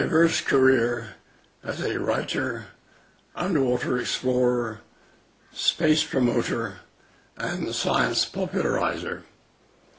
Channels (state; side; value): identical; both; correlation 1.00